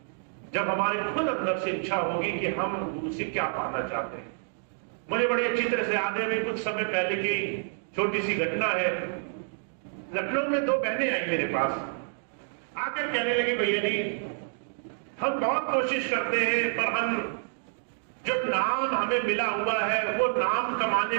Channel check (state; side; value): silent; left; digital silence